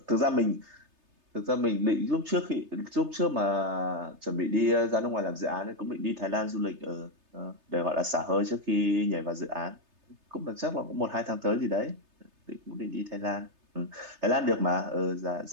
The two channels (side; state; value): left; late; 3.3 ms